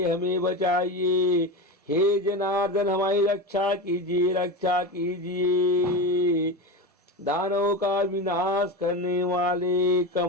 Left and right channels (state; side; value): normal; both; correlation 0.21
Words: हमें बचाइए। हे जनार्दन, हमारी रक्षा कीजिए, रक्षा कीजिए। दानवों का विनाश करने वाले